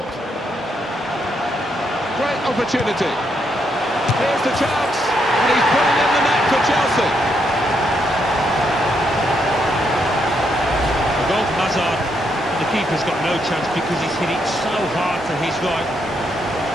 Great opportunity. Here's the chance, and he's putting in the net for Chelsea. A goal from Hazard, and the keeper's got no chance because he's hit it so hard to his right.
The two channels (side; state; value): both; normal; correlation 0.77